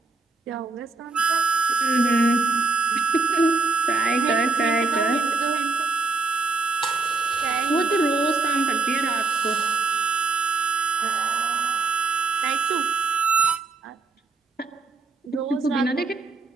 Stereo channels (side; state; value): left; quieter; 4.0 dB